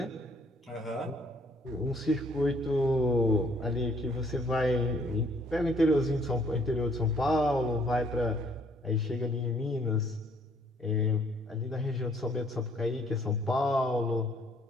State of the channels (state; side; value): normal; both; correlation 0.63